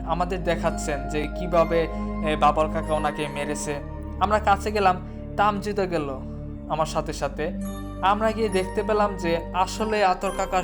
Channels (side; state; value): both; identical; correlation 1.00